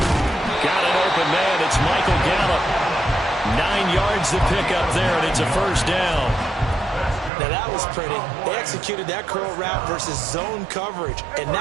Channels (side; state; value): left; drops out; at 7.3 s